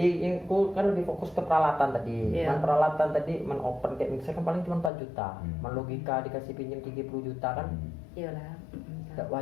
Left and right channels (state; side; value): drops out; right; at 4.9 s